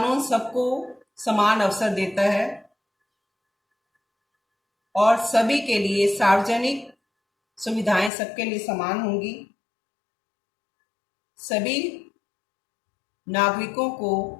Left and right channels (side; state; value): right; drops out; at 8.1 s